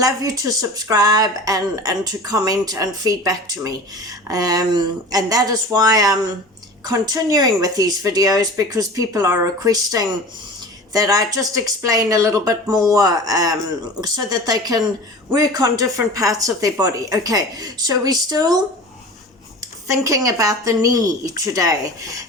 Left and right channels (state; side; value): normal; both; correlation 0.36